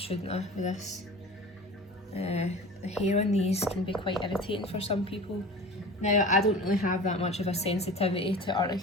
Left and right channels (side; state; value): both; normal; correlation 0.36